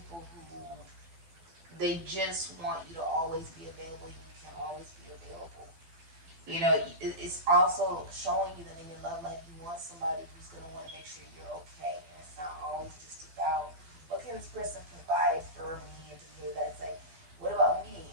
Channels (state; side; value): late; left; 12 ms